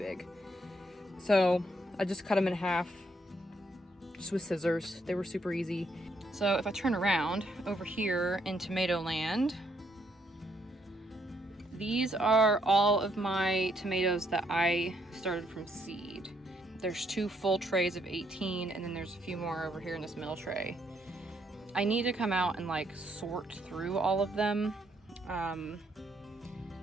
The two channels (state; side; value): normal; both; correlation 0.73